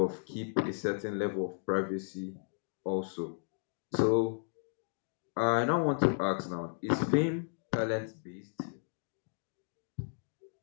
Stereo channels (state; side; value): silent; right; digital silence